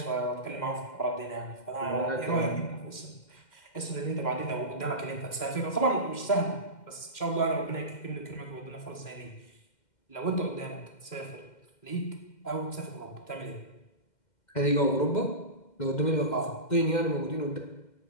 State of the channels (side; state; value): right; late; 2.1 ms